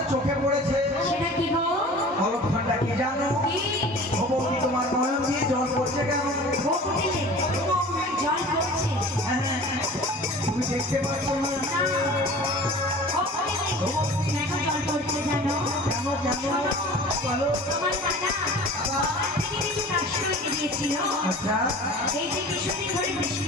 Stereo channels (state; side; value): normal; both; correlation 0.41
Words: চোখে পড়েছে। অলক্ষণটা কি জানো? ও বৌদি তোমার নয়ন দিয়ে জল পড়ছে কেন? তুমি দেখতে পাচ্ছ না? কেন কেন বলো? আচ্ছা এই যে কিছুদিন ধরে বৃষ্টি